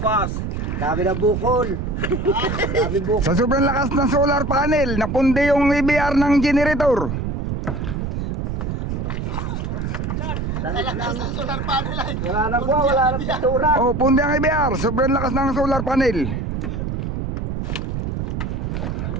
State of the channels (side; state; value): right; noise; rumble, 3 dB below the sound